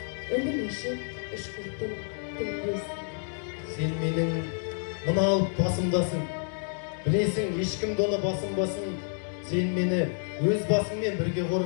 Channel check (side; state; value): right; silent; 59 dB below the other